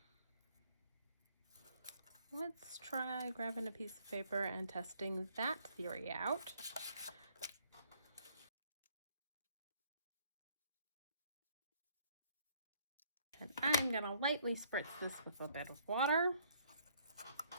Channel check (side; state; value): both; inverted; correlation -0.64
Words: Let's try grabbing a piece of paper and testing that theory out. And I'm going to lightly spritz this with a bit of water.